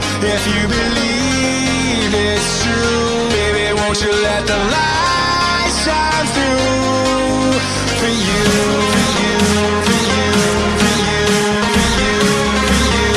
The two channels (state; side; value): identical; both; correlation 1.00